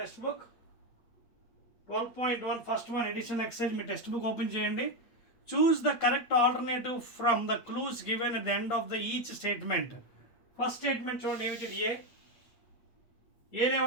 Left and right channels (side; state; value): right; late; 8.7 ms